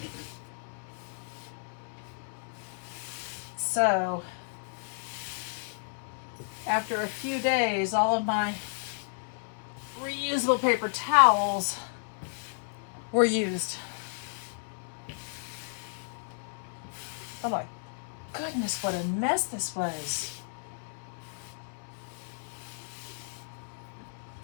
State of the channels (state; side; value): silent; right; 56 dB below the other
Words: So, after a few days, all of my reusable paper towels were used. Oh my goodness, what a mess this was.